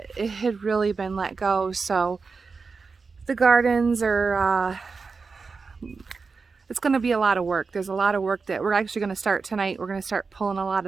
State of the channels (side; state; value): left; quieter; 4.7 dB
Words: it had really been let go. So the gardens are, it's going to be a lot of work. There's a lot of work that we're actually going to start tonight. We're going to start pulling a lot